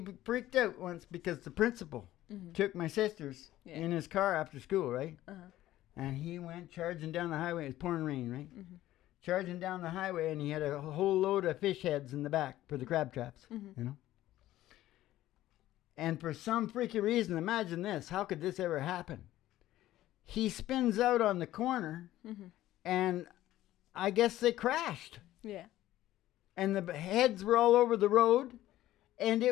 freaked out once because the principal took my sisters in his car after school, right? And he went charging down the highway. It was pouring rain, right? Charging down the highway, and he had a whole load of fish heads in the back for the crab traps, you know? And for some freaky reason, imagine this. How could this ever happen? He spins out on the corner, and I guess they crashed. Yeah. And the heads were all over the road, and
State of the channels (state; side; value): quieter; right; 14.6 dB